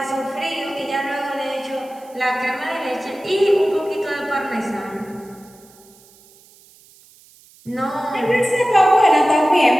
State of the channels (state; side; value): noise; right; hiss, 27 dB below the sound